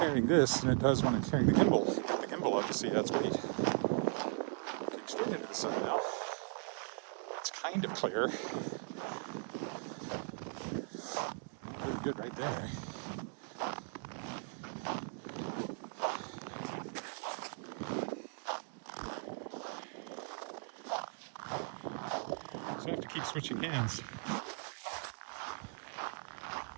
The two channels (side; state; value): left; silent; 52 dB below the other